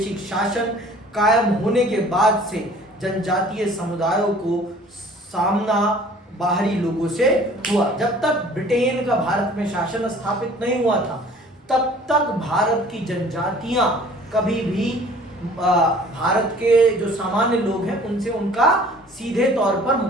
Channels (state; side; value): normal; both; correlation 0.51